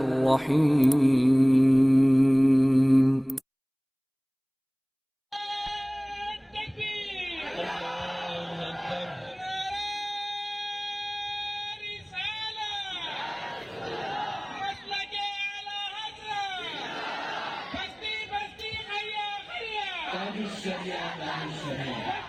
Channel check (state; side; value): identical; both; correlation 1.00